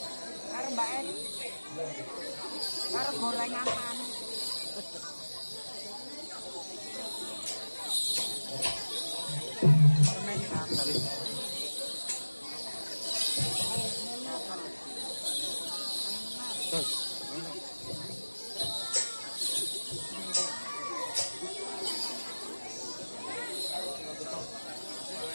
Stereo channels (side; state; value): both; inverted; correlation -1.00